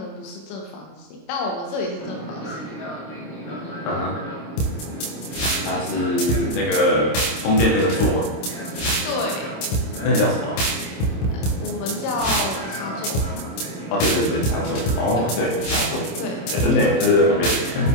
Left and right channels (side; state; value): right; late; 26 ms